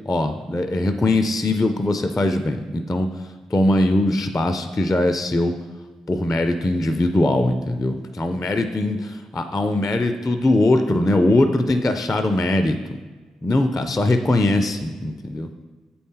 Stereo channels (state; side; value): normal; both; correlation 0.89